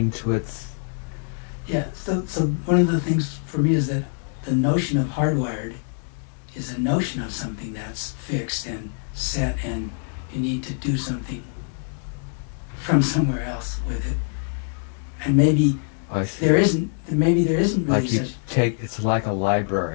to its? Yeah. So one of the things for me is that the notion of hardwired is a notion of something that's fixed and set, and you need to do something from somewhere else with it. And maybe there isn't really like you such. It's like a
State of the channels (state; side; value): silent; right; 59 dB below the other